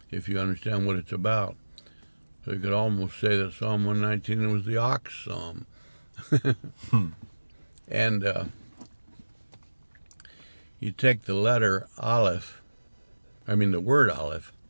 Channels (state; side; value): inverted; both; correlation -1.00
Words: if you understand what it's about. So you could almost say that Psalm 119 was the ox psalm. And you take the letter Aleph, the word Aleph